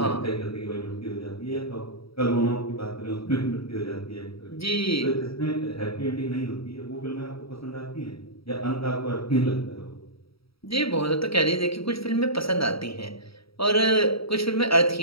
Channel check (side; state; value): right; late; 0.76 ms